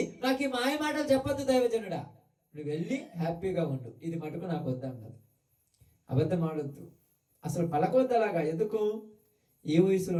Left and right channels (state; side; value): identical; both; correlation 1.00